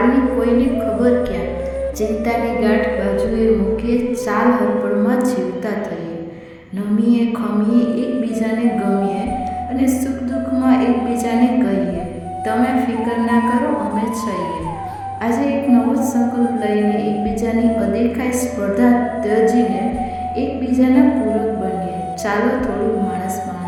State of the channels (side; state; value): both; identical; correlation 1.00